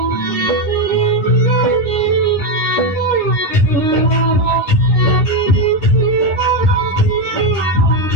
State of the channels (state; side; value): late; right; 9.8 ms